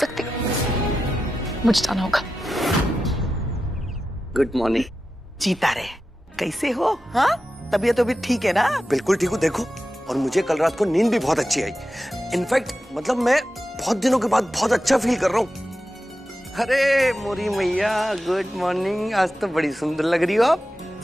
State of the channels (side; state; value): both; normal; correlation 0.92